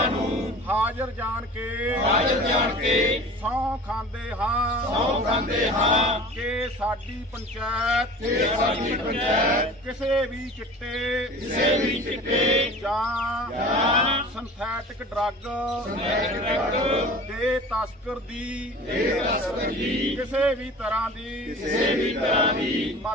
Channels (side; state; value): both; normal; correlation 0.40